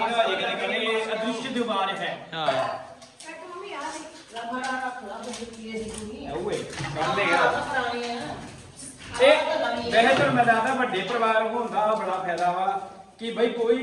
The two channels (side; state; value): both; identical; correlation 1.00